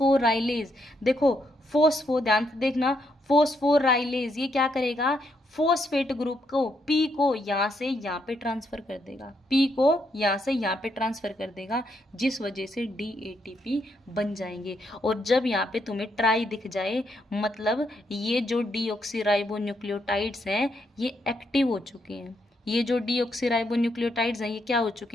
देखो ध्यान से देखना, फोस्फोराइलेज ये क्या करेगा, फॉस्फेट ग्रुप को पी को यहाँ से यहाँ पे ट्रांसफर कर देगा, पी को यहाँ से यहाँ पे ट्रांसफर कर देगा, जिस वजह से DATP बन जाएंगे। और जब यहाँ पे तुम्हें ट्राई दिख जाए, मतलब ये जो डीऑक्सीराइबोन्यूक्लियोटाइड्स हैं ये एक्टिव हो चुके हैं। ये जो डीऑक्सीराइबोन्यूक्लियोटाइड्स हैं ये क्या हो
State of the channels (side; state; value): both; normal; correlation 0.77